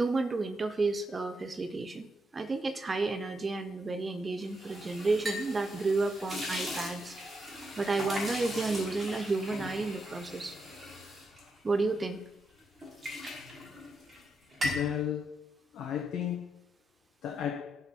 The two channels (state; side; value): normal; both; correlation 0.82